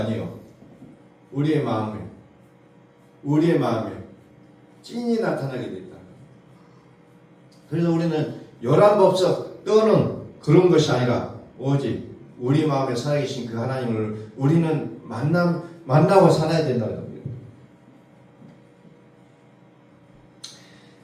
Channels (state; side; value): identical; both; correlation 1.00